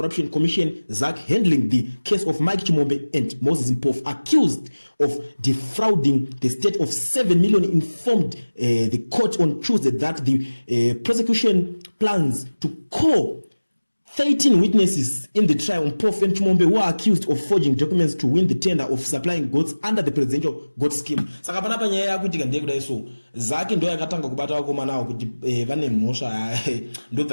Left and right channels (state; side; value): inverted; both; correlation -1.00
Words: Commission ZAC handling the case of Mike Chimombe and Moses Mpofu accused of defrauding the state of 7 million informed the court on Tuesday that the prosecution plans to call 13 witnesses in the trial on Mpofu and Chimombe who are accused of forging documents to win the tender of supplying goats under the presidential goat scheme. Saka panapa nyaya yakuitika ndekuda iso zake ndo yakatanga kubata vakomana avo kuti vane mhosva